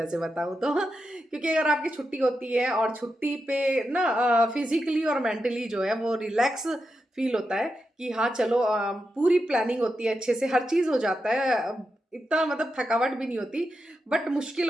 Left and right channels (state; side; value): normal; both; correlation 0.87